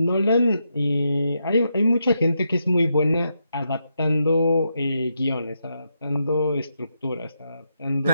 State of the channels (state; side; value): inverted; both; correlation -0.83